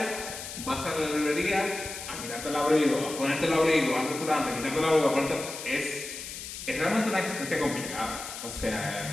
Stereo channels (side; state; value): left; noise; hiss, 9 dB below the sound